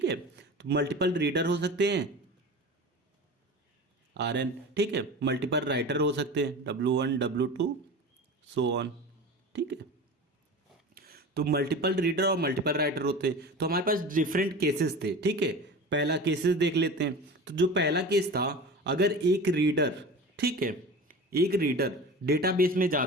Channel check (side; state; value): both; normal; correlation 0.33